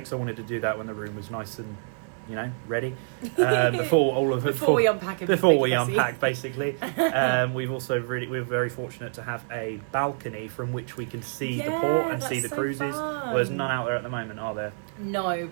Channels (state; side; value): silent; left; digital silence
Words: I wanted to do that when the room was nice and ready before we unpack basically. We're very fortunate to have a balcony from which we can see the port and see the cruises. Well, there's none out there at the moment, are there? No,